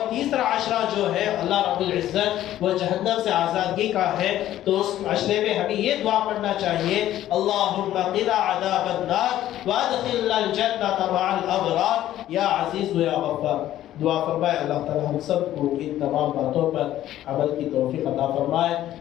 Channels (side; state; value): right; quieter; 13.0 dB